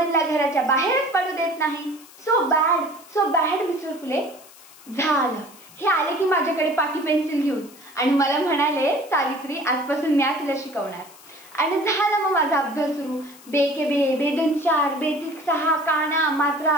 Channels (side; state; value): left; noise; hiss, 22 dB below the sound